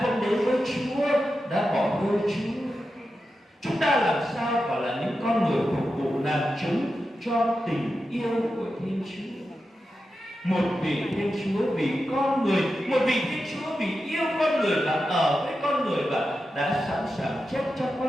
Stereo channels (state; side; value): normal; both; correlation 0.90